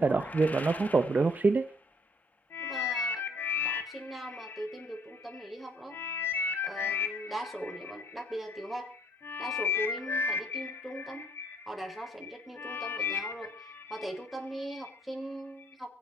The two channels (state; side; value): normal; both; correlation 0.65